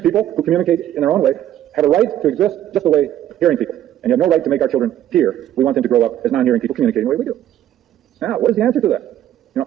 people who communicate in their own way have a right to exist just the way hearing people. And you have no right to make our children hear. We want them to grow up as non-hearing people communicating the way we do. Now, what is the answer to that?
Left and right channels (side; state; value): left; quieter; 11.9 dB